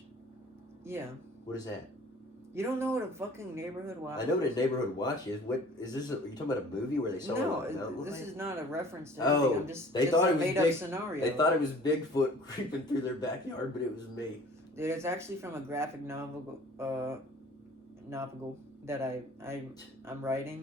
Yeah. What is that? You don't know what a fucking neighborhood watch I know what a is? neighborhood watch is. What is this? Are you talking about a movie where they saw No, it on a mountain this lion? is not a reference to Oh, anything. I'm just, they just thought a it was made up big- scenario. They thought it was Bigfoot creeping through their backyard, but it was me. Dude, it's actually from a graphic novel that I'm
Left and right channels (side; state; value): both; normal; correlation 0.49